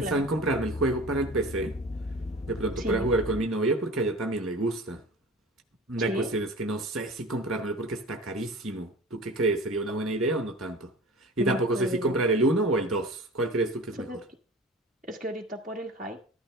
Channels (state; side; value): normal; both; correlation 0.38